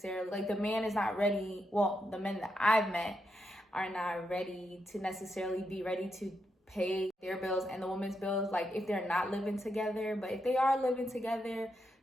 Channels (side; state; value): both; normal; correlation 0.83